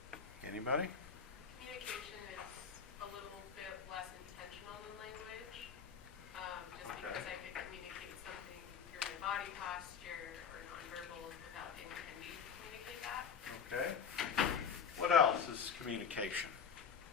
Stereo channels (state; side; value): quieter; right; 6.9 dB